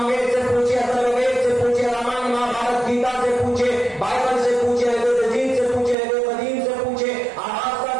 سے پوچھے, اتھروید سے پوچھے, رامائن مہابھارت گیتا سے پوچھے, بائبل سے پوچھے, جین سے پوچھے, قدیم سے پوچھے,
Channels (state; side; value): drops out; left; at 6.0 s